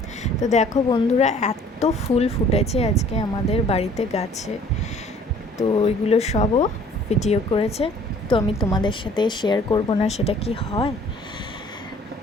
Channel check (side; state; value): both; normal; correlation 0.54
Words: তো দেখো বন্ধুরা, এত ফুল ফুটেছে আজকে আমাদের বাড়িতে গাছে। তো ওইগুলো সবও ভিডিও করেছে, তো আমি তোমাদের সাথে শেয়ার করব না সেটা কি হয়।